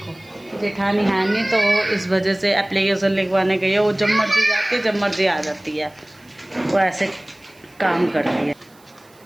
जेठानी है नहीं तो इस वजह से एप्लीकेशन लिखवाने गई है। वो जब मर्जी जाती है, जब मर्जी आ जाती है, वो ऐसे काम करती है।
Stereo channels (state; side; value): noise; right; hiss, 30 dB below the sound